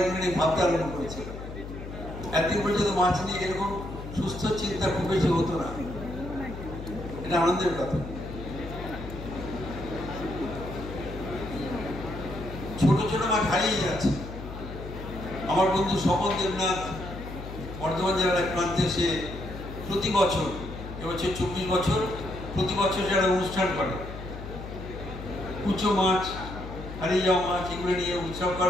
এগুলো নিয়ে ভাবতে আরম্ভ করেছেন। একদিন পর্যন্ত মাছ নিয়ে এরকম সুস্থ চিন্তা খুব বেশি হতো না, এটা আনন্দের কথা। ছোট ছোট মাছ হারিয়ে যাচ্ছে। আমার বন্ধু স্বপন দেবনাথ বর্ধমান জেলার এক প্রান্তে, সে প্রতি বছর, এবছর 24 বছর, প্রতি বছর যারা অনুষ্ঠান করে, কুচো মাছ, হারিয়ে যাওয়া মাছ, এগুলো নিয়ে উৎসব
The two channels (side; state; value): left; noise; hum, 10 dB below the sound